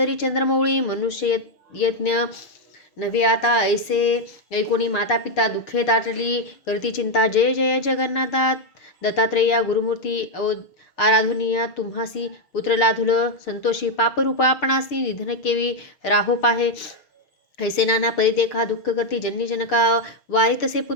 चंद्रमौळी मनुष्य यज्ञ नव्हे आता ऐसे ऐकोणी माता पिता दुःखे दाटली करती चिंता जय जय जगन्नाथा दत्तात्रेया गुरुमूर्ती आराधुनिया तुम्हासी पुत्र लाधुल संतोषी पापरूपा आपणासी निधन केवी राहो पाहे ऐसे नाना परिदेखा दुःख करती जननी जनका वारी तसे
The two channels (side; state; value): right; late; 6.6 ms